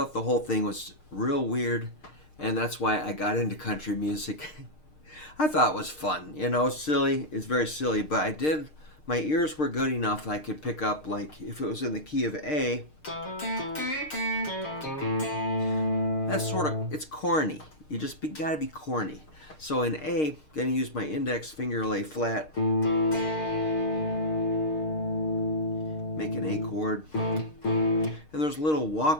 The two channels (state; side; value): late; right; 6.5 ms